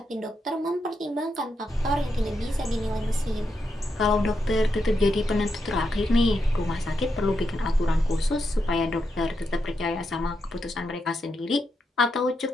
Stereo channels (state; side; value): normal; both; correlation 0.84